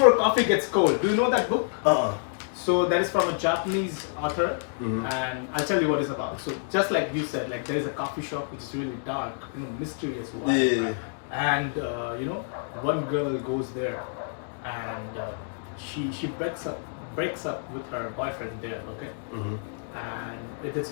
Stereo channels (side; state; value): right; silent; digital silence